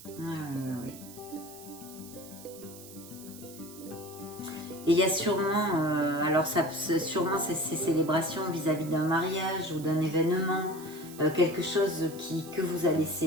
Oui. Et il y a sûrement, alors sûrement ces célébrations vis-à-vis d'un mariage ou d'un événement, quelque chose que vous allez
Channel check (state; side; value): noise; right; hiss, 17 dB below the sound